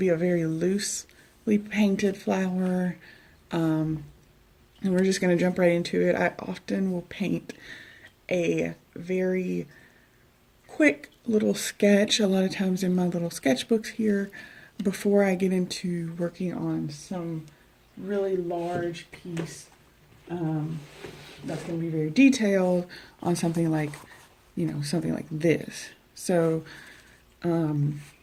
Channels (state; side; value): identical; both; correlation 1.00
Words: a very loosely painted flower, and we're just going to jump right into it. I often will paint a very quick little sketch, a lot of times in my little sketchbooks here, before I get into working on some really large piece that's going to be very detailed on something like, something like this. So I